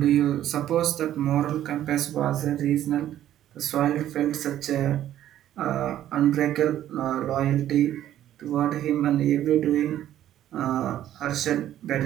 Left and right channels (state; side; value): quieter; left; 12.1 dB